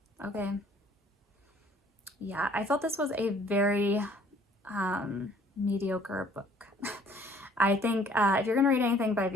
okay. Yeah, I felt this was a very mediocre book. I think if you're going to read anything by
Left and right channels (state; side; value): normal; both; correlation 0.57